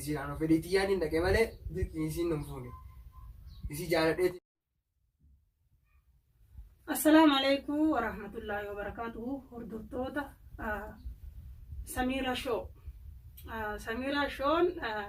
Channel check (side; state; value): both; identical; correlation 1.00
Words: أنا فديتياني نكمل ماله دركي يسير نمفوني يسير جالت ديتي. السلام عليكم ورحمة الله وبركاته. هردوتوتا سميرة شو سميرة شون